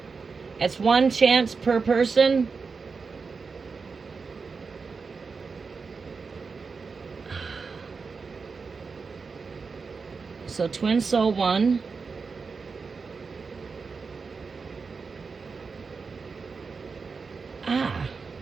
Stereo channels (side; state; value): left; quieter; 4.9 dB